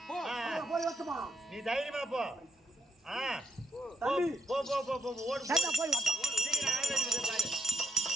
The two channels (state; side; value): normal; both; correlation 0.74